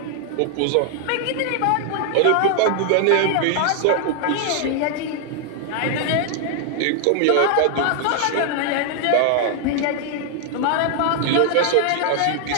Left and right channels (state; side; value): different; both; correlation 0.00